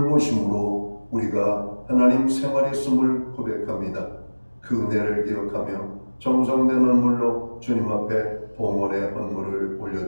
우리가 하나님 생활했음을 고백합니다. 그 은혜를 기억하며 정성된 헌물로 주님 앞에 봉헌의 헌물을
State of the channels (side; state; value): both; inverted; correlation -1.00